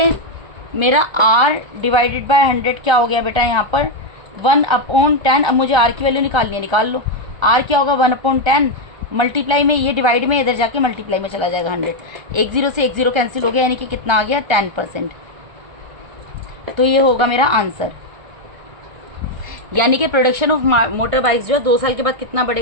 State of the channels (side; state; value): left; late; 1.3 ms